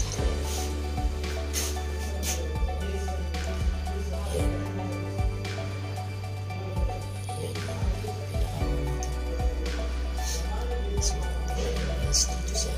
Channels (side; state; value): both; identical; correlation 1.00